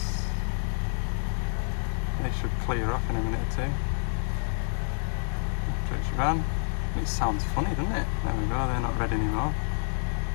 They should clear off in a minute or two. After it's run. It sounds funny, doesn't it? There we go, they're not red anymore.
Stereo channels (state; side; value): silent; right; digital silence